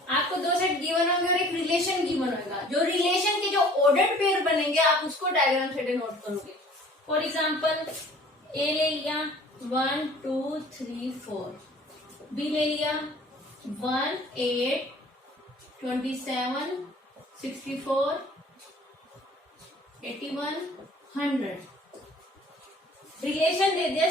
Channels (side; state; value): both; normal; correlation 0.50